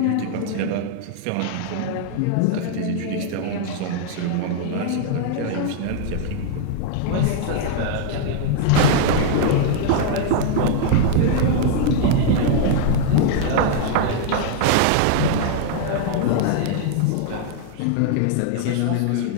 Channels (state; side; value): different; both; correlation 0.00